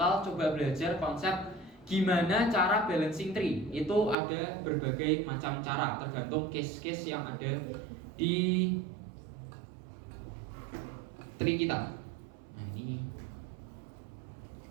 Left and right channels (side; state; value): left; drops out; at 4.2 s